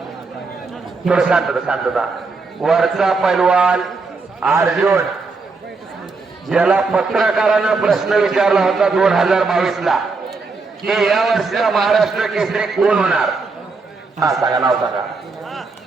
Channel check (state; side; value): quieter; left; 4.1 dB